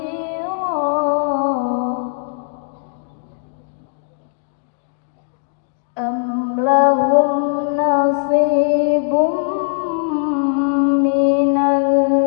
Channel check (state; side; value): silent; right; digital silence